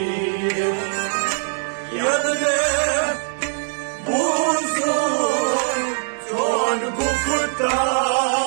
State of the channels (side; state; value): left; silent; digital silence